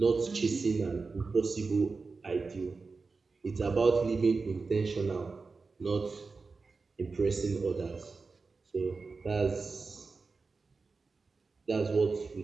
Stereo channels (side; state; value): left; quieter; 4.3 dB